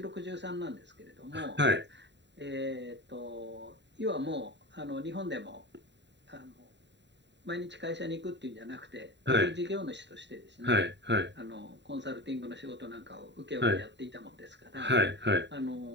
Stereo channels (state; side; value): late; left; 0.52 ms